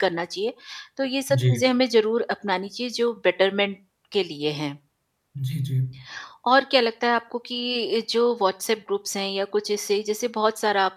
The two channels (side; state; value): both; identical; correlation 1.00